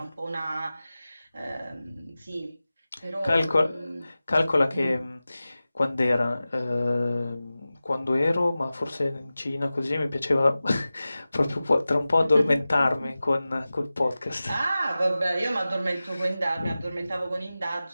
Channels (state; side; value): inverted; both; correlation -0.96